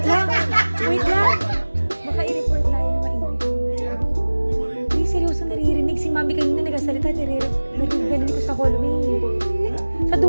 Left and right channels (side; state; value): both; inverted; correlation -1.00